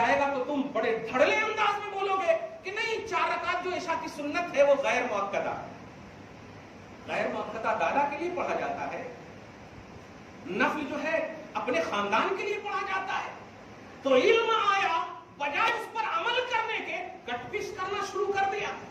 گا تو تم بڑے دھڑلے انداز میں بولو گے کہ نہیں، 4 رکعت جو عشاء کی سنت ہے وہ غیر مؤکدہ ہے۔ غیر مؤکدہ دادا کے لیے پڑھا جاتا ہے، نفل جو ہے اپنے خاندان کے لیے پڑھا جاتا ہے۔ تو علم آیا، بجائے اس پر عمل کرنے کے کٹ پیس کرنا شروع کر دیا۔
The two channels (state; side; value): identical; both; correlation 1.00